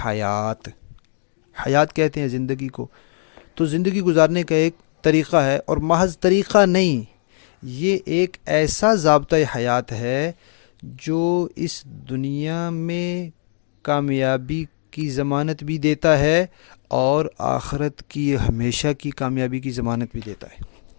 حیات۔ حیات کہتے ہیں زندگی کو۔ تو زندگی گزارنے کا ایک طریقہ ہے، اور محض طریقہ نہیں، یہ ایک ایسا ضابطۂ حیات ہے جو اس دنیا میں کامیابی کی ضمانت بھی دیتا ہے اور آخرت کی ہمیشہ کی کامیابی کی ضمانت بھی دیتا ہے۔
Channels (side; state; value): right; silent; digital silence